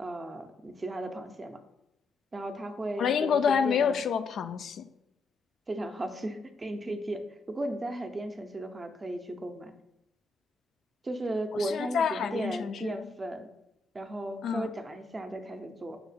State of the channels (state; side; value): quieter; right; 3.4 dB